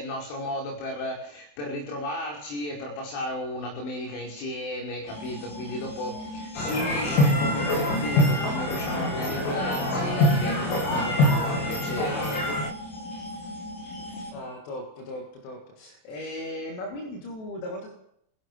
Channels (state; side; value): late; right; 27 ms